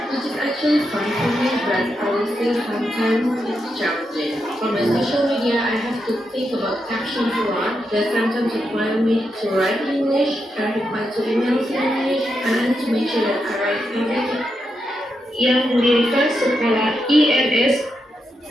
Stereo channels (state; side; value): normal; both; correlation 0.84